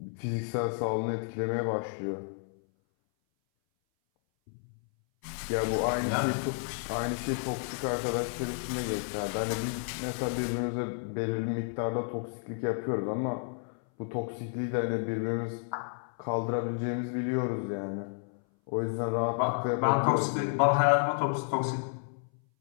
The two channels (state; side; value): silent; right; 57 dB below the other